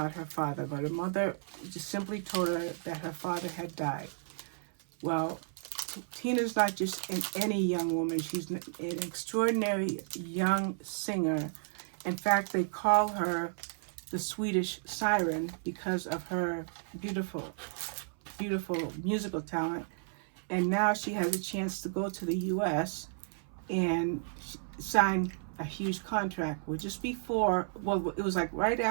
her father, but her mother just simply told her that her father had died. Well, Tina's not just any young woman. She's an extraordinary young singer. In fact, they call her the Swedish Siren because of her beautiful musical talent. And now she has a chance to go to the U.S. and sign a huge contract. Well, just before, it was like right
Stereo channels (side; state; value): left; silent; 56 dB below the other